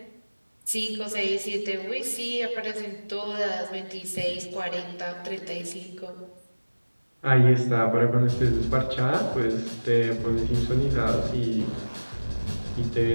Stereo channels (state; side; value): inverted; both; correlation -1.00